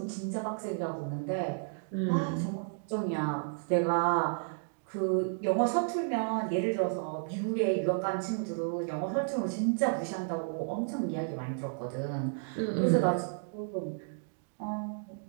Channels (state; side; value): silent; left; digital silence